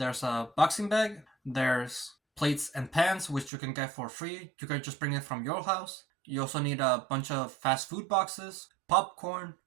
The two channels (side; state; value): left; drops out; at 3.5 s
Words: a boxing bag. There's plates and pans, which you can get for free. You can just bring it from your house. You also need a bunch of fast food boxes, popcorn.